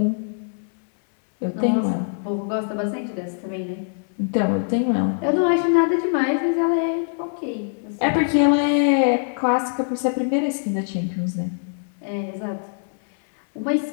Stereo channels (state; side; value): silent; right; digital silence